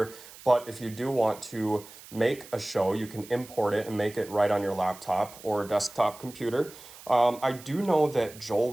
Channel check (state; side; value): noise; right; hiss, 18 dB below the sound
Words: but if you do want to make a show, you can import it and make it right on your laptop or desktop computer. I do know that Joel